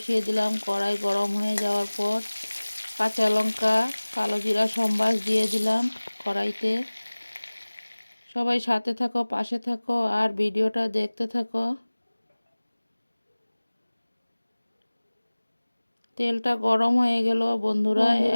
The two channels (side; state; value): both; inverted; correlation -1.00